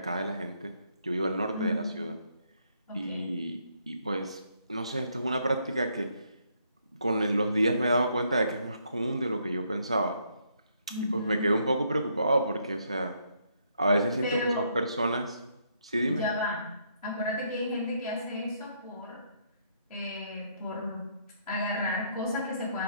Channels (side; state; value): both; inverted; correlation -0.72